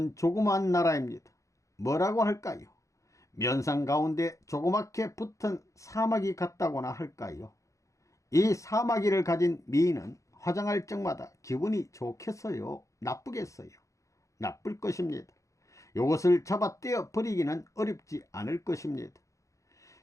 조그마한 나라입니다. 뭐라고 할까요? 면상 가운데 조그맣게 붙은 사마귀 같다고나 할까요? 이 사마귀를 가진 미인은 화장할 적마다 기분이 좋겠어요? 나쁘겠어요? 나쁠 것입니다. 이것을 잡아 떼어 버리기는 어렵지 않을 것입니다.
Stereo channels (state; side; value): late; right; 0.15 ms